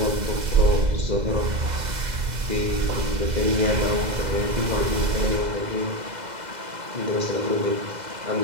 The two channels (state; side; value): late; left; 2.0 ms